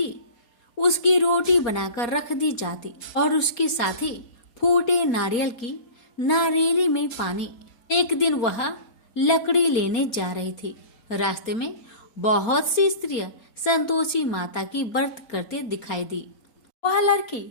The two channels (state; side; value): late; right; 4.4 ms